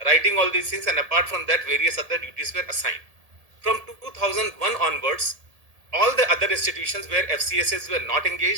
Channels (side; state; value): left; late; 1.7 ms